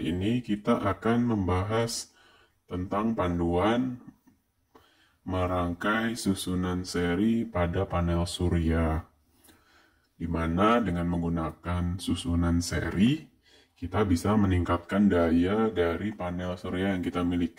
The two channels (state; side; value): identical; both; correlation 1.00